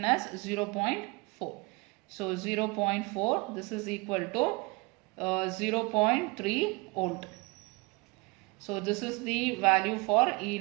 as 0.4. So 0.4, this is equal to 0.3 volt. So this is the value for E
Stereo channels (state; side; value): quieter; left; 26.4 dB